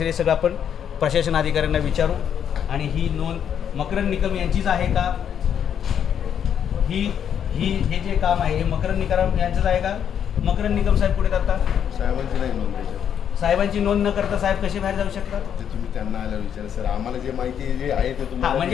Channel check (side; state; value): right; quieter; 8.7 dB